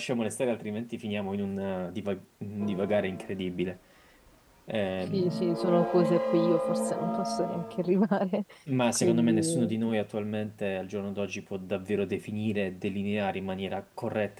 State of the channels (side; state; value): both; identical; correlation 1.00